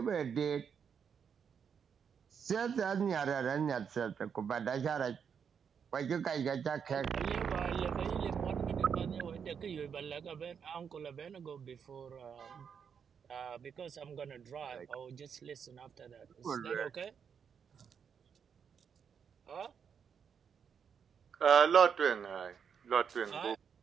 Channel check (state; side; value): quieter; left; 7.1 dB